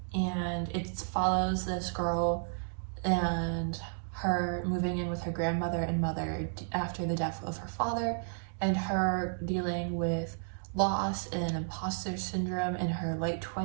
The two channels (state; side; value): silent; left; digital silence